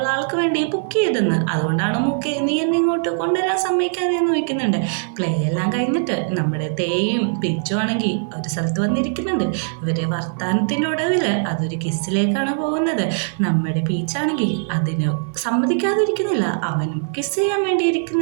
ആൾക്ക് വേണ്ടി ബുക്ക് ചെയ്തെന്ന്, അതുകൊണ്ടാണ് മൂക്കെ നീ എന്നെ ഇങ്ങോട്ട് കൊണ്ടുവരാൻ സമ്മതിക്കാതെന്ന് ചോദിക്കുന്നുണ്ട്. പ്ലേ എല്ലാം കഴിഞ്ഞിട്ട് നമ്മുടെ തേയും പിച്ചും ആണെങ്കിൽ ഒരു സ്ഥലത്ത് വന്നിരിക്കുന്നുണ്ട്. ഇവരെ വർത്താനത്തിൻ്റെ ഒടുവിൽ അതൊരു കിസ്സിലേക്കാണ് പോകുന്നത്. നമ്മുടെ പീച്ചാണെങ്കിൽ അതിന് സമ്മതിക്കാതിരിക്കുന്നില്ല. അവനും കിസ് ചെയ്യാൻ വേണ്ടി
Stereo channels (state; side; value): silent; left; 65 dB below the other